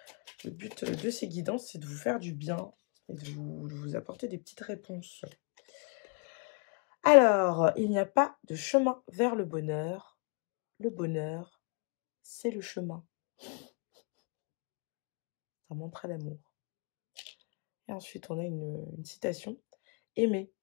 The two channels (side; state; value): right; quieter; 34.8 dB